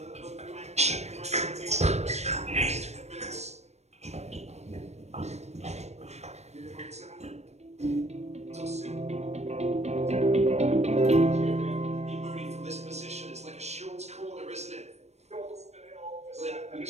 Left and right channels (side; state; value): left; late; 0.32 ms